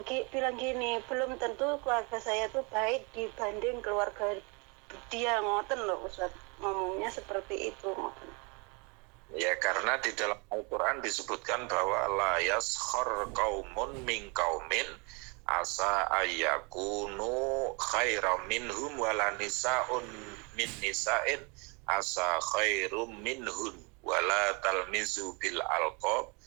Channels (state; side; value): quieter; left; 31.4 dB